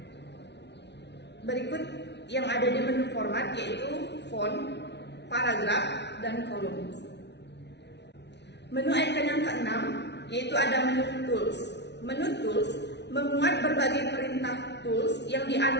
Berikut yang ada di menu format yaitu font, paragraf, dan kolom. Menu icon yang keenam yaitu ada menu tools. Menu tools memuat berbagai perintah tools yang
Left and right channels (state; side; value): late; right; 0.50 ms